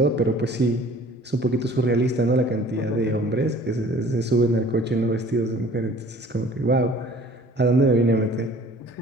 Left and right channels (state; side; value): normal; both; correlation 0.50